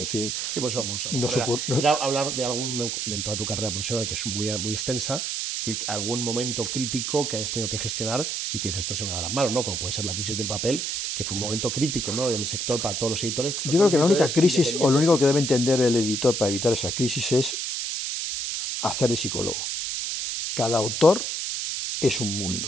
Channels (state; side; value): noise; right; hiss, 2 dB below the sound